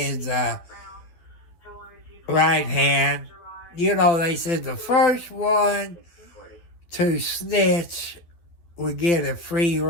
right hand. You know, they said the first one to snitch would get a free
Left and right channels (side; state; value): right; late; 12 ms